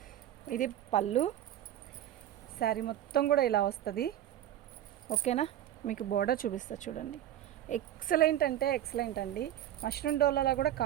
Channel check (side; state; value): left; quieter; 11.9 dB